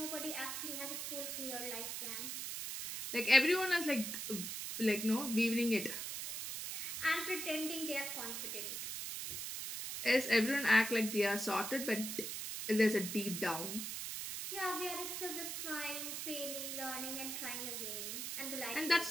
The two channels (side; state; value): right; noise; hiss, 4 dB below the sound